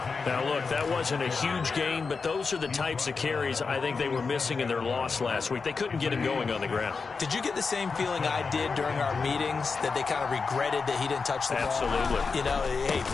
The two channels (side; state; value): right; quieter; 4.8 dB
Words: Now, look, that wasn't a huge gain, but those are the types of carries I think they were missing in their loss last week. They couldn't get him going on the ground. Did you get the same feeling I did during our meetings, that they kind of regretted that he didn't touch the ball? Absolutely. You know, hey,